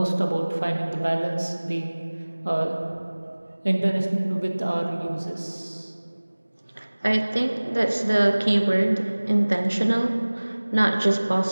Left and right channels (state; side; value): inverted; both; correlation -1.00